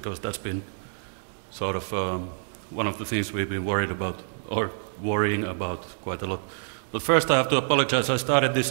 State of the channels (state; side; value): silent; left; digital silence